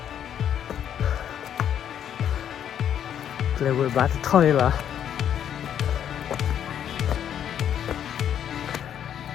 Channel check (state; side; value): quieter; right; 9.5 dB